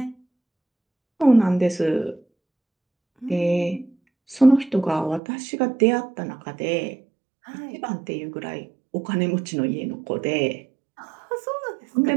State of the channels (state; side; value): drops out; left; at 5.2 s